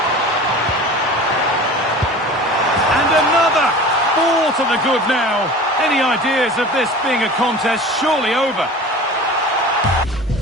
And another! 4 to the good now. Any ideas of this being a contest surely over?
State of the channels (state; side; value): normal; both; correlation 0.38